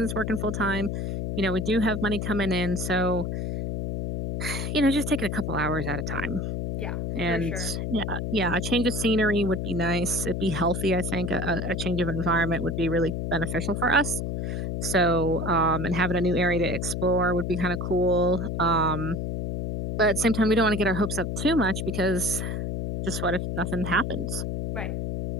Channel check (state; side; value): noise; left; hum, 2 dB below the sound